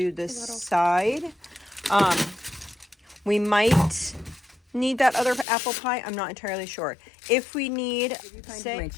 the side. We might need that other apple pie. I'm not entirely sure. If we need,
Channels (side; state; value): right; drops out; at 5.5 s